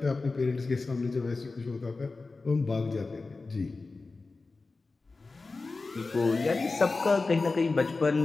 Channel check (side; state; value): right; quieter; 3.8 dB